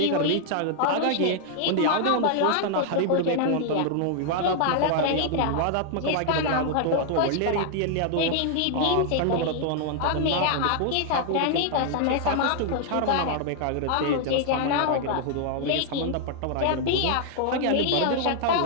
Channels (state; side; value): different; both; correlation 0.00